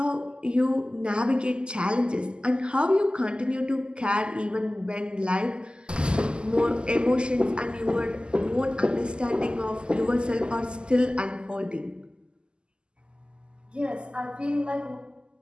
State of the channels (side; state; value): left; late; 0.049 ms